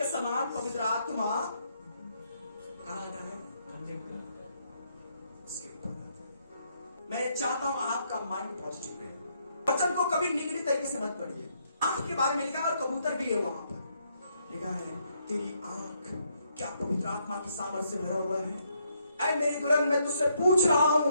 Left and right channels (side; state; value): both; inverted; correlation -0.74